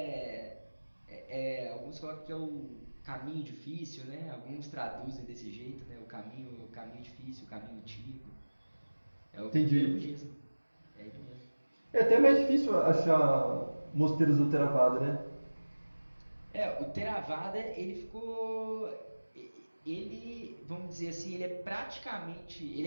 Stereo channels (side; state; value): both; inverted; correlation -1.00